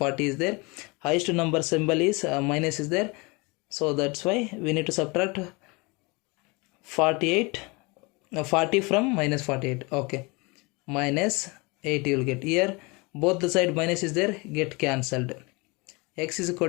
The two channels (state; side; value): quieter; right; 27.2 dB